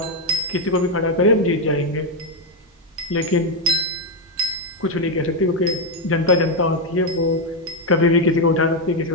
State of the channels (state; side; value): normal; both; correlation 0.03